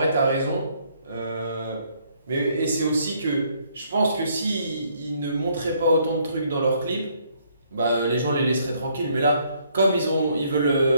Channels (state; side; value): inverted; both; correlation -0.67